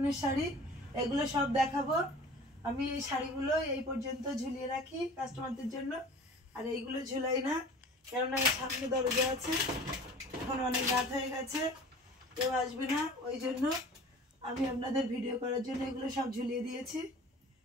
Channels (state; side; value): normal; both; correlation 0.43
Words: শাড়ি। এগুলো সব দেখাবো। আমি এই শাড়িগুলো এই পর্যন্ত ঝুলিয়ে রাখি কাস্টমারদের জন্য, আর এইগুলো ঝুলাই না, কেননা সামনে দরজা আছে, এখন অনেক রাত হয়ে গেছে, কেউ আসবে না, ওই জন্য আমি আপনাদের ভিডিও করার জন্য এগুলো সব ঝুলিয়ে দিয়েছি,